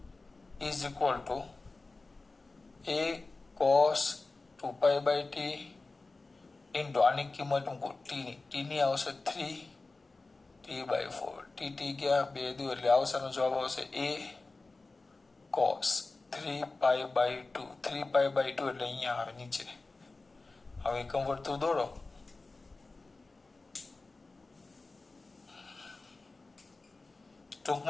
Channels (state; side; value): quieter; right; 3.5 dB